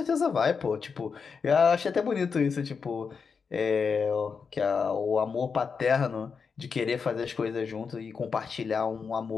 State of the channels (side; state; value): right; quieter; 5.6 dB